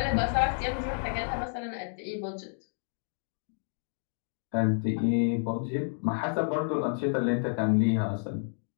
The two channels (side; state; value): right; silent; digital silence